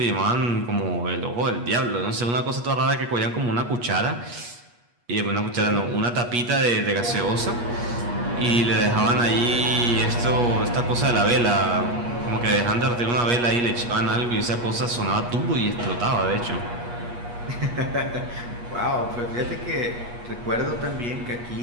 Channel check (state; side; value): late; left; 8.3 ms